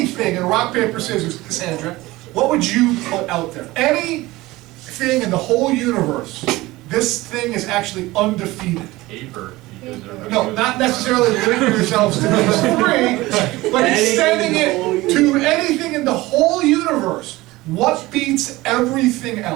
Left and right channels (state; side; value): quieter; left; 19.4 dB